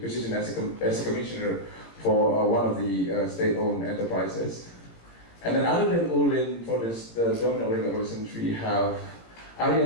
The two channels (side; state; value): right; late; 17 ms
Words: as a commissioner for one of the state-owned enterprises. And then other than Ulin, for the dominant oligarchy, we have Arya